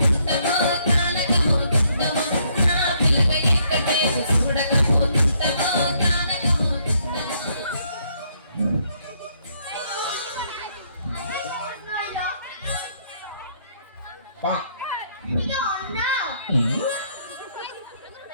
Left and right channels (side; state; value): both; inverted; correlation -0.70